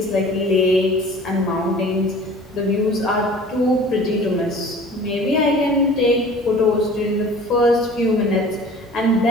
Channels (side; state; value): both; normal; correlation 0.45